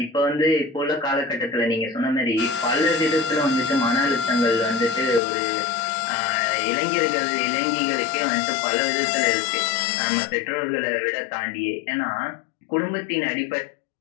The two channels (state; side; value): drops out; right; at 5.2 s